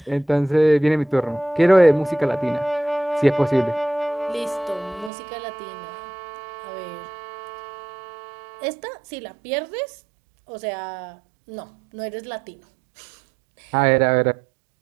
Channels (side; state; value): left; drops out; at 5.1 s